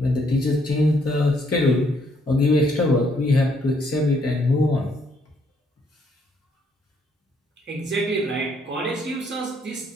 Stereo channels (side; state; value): both; normal; correlation 0.70